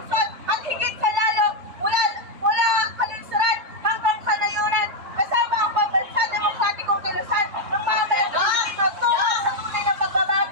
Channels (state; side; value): late; left; 3.4 ms